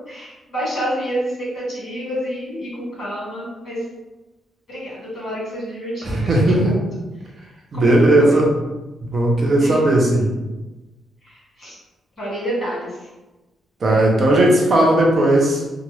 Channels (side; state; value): both; normal; correlation 0.77